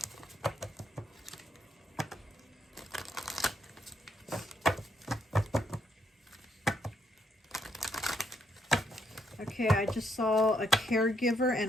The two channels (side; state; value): both; normal; correlation 0.75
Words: Okay, I just saw a caregiver